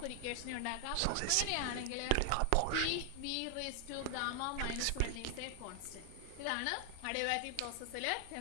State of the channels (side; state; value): both; different; correlation 0.00